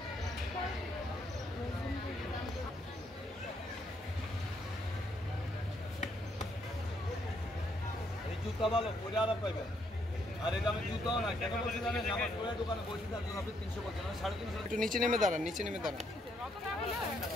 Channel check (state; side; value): normal; both; correlation 0.73